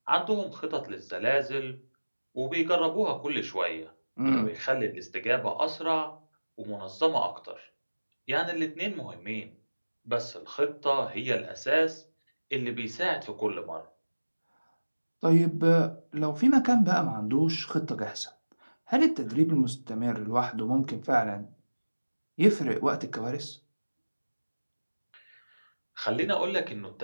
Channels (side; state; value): both; inverted; correlation -1.00